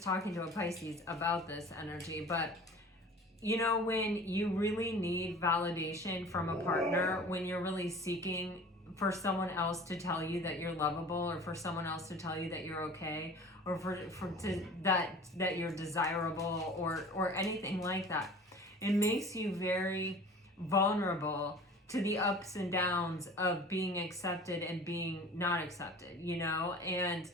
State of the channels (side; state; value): both; normal; correlation 0.43